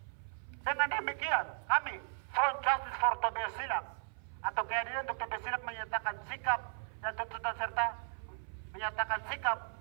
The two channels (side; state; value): left; silent; 54 dB below the other